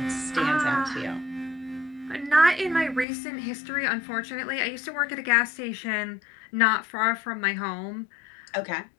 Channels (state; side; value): drops out; right; at 3.1 s